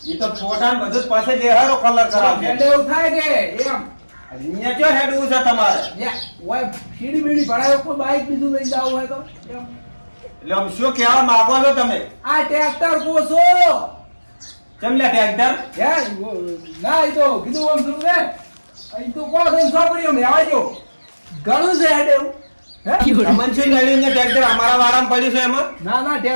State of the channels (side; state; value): both; inverted; correlation -1.00